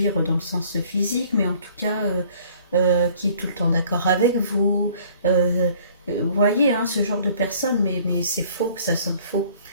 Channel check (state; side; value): inverted; both; correlation -0.55